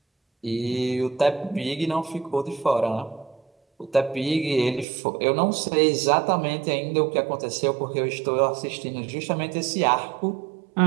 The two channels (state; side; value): drops out; left; at 4.9 s